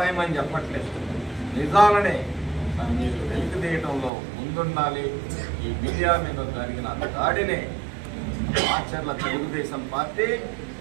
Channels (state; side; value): drops out; left; at 4.1 s